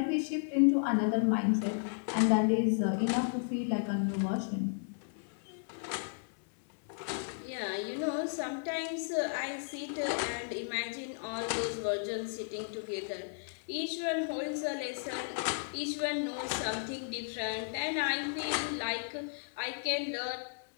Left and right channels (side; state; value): right; silent; digital silence